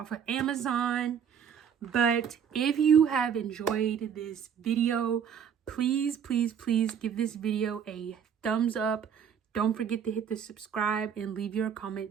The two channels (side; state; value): left; quieter; 7.9 dB